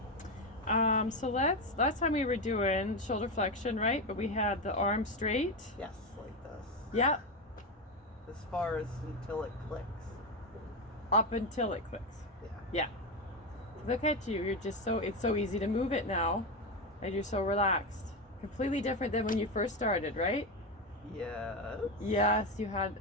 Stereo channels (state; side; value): normal; both; correlation 0.13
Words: So last time we were doing shoulder flexion, right? But we had the arm straight. Yes, like this. Yeah. As far as until it clicks. Up until it clicks. Yeah. Yeah. Look at you. You're just it's so easy to move it now. And you're so relaxed. Completely different than when you first started, right? Yes. Yes, you